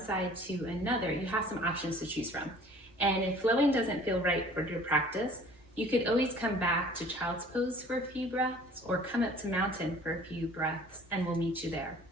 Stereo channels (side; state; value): both; normal; correlation 0.50